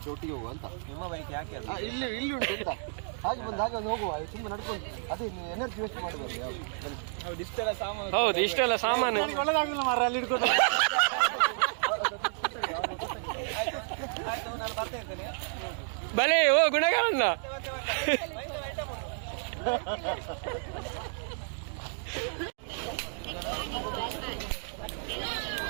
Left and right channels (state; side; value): silent; left; digital silence